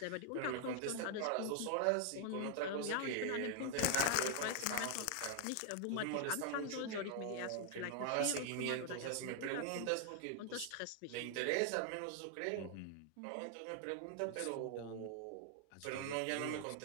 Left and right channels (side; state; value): both; different; correlation 0.00